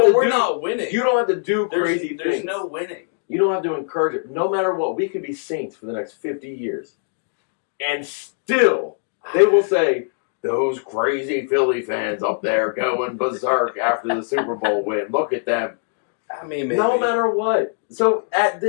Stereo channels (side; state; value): right; silent; digital silence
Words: to we're do. not winning. You don't have to do crazy There's things. no winning. You don't have to encourage it. No matter what, we could be saints for the next 50 years. And still, they will say, those crazy Philly fans up there going berserk after the Super Bowl win. Look at them. I mean, maybe. No matter what. So at